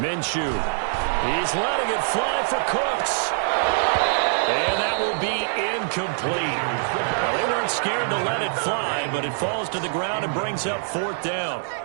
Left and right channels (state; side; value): silent; left; 63 dB below the other